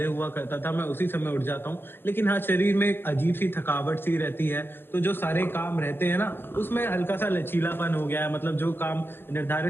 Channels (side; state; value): right; late; 0.10 ms